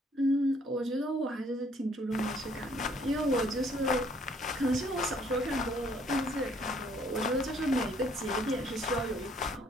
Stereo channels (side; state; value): both; normal; correlation 0.63